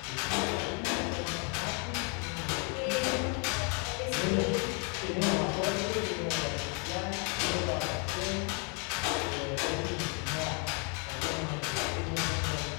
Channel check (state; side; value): quieter; right; 36.4 dB